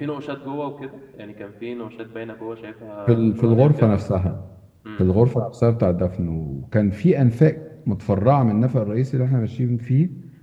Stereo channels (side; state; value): both; identical; correlation 1.00